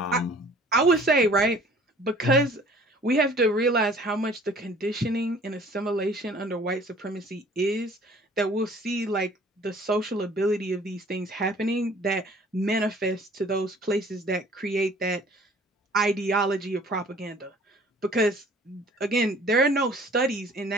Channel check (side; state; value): both; normal; correlation 0.52